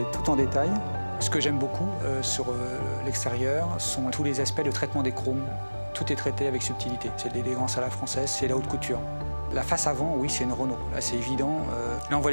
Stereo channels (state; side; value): inverted; both; correlation -1.00